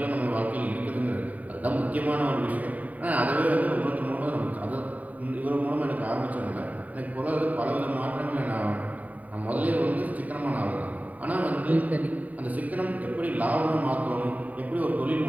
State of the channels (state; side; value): late; left; 0.072 ms